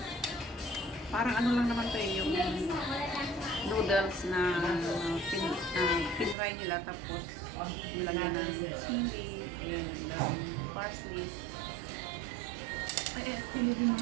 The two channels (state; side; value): drops out; left; at 6.4 s